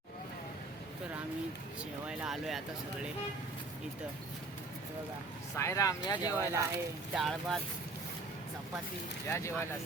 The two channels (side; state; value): left; quieter; 3.3 dB